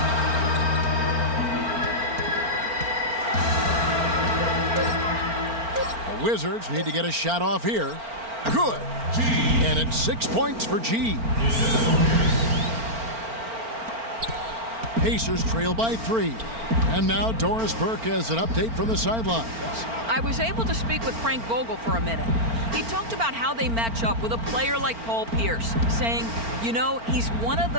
The Wizards need to get a shot off here. Good. And it's 6 points for G. Pacers trail by 3. And now Doris Burke has an update from the sidelines. I was able to speak with Frank Vogel for a minute. He talked about how they match up with a player like Paul Pierce, saying, you know, he's one of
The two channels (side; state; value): left; late; 4.4 ms